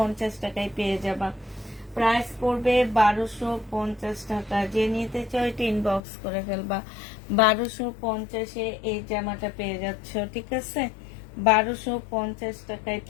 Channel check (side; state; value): right; drops out; at 6.0 s